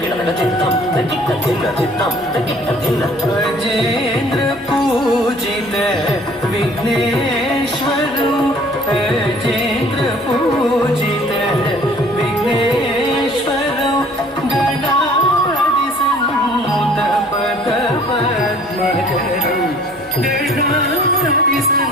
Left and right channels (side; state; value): both; normal; correlation 0.54